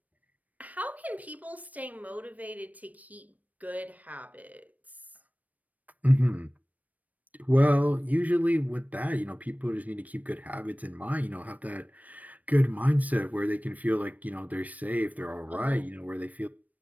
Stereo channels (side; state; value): left; late; 0.074 ms